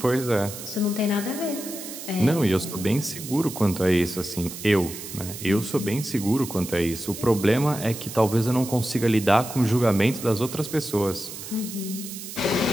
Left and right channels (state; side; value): noise; right; hiss, 11 dB below the sound